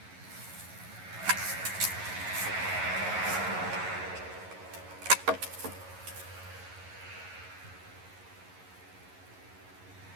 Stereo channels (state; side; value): late; left; 11 ms